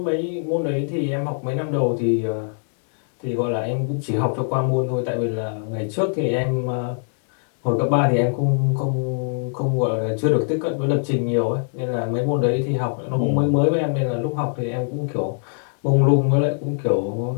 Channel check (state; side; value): silent; right; digital silence